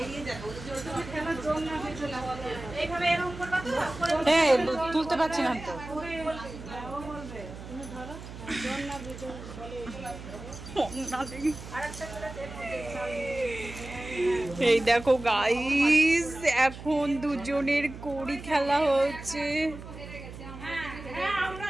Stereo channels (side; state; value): right; noise; hum, 13 dB below the sound